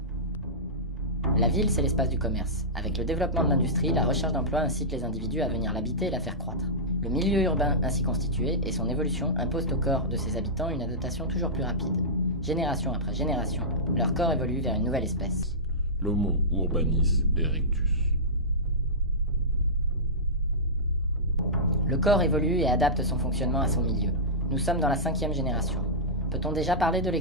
La ville, c'est l'espace du commerce. Avec le développement de l'industrie, la recherche d'emploi incite les individus à venir l'habiter et la faire croître. Le milieu urbain ainsi constitué et son évolution imposent au corps de ses habitants une adaptation toujours plus rapide. Génération après génération, leur corps évolue vers une nouvelle espèce. L'Homo urbanis erectus. Le corps évolue et adapte son fonctionnement à son milieu. Nous sommes dans la 5e génération. Peut-on déjà parler de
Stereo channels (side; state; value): both; normal; correlation -0.16